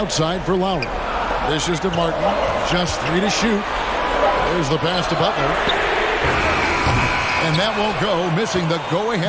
for Lowry. This is to Martin. Just 3 to shoot. There's the pass to Butler. And that won't go, missing the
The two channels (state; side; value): identical; both; correlation 1.00